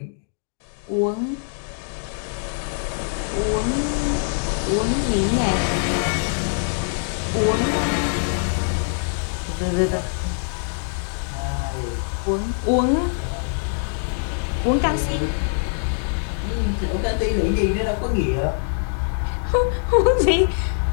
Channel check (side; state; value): right; silent; 63 dB below the other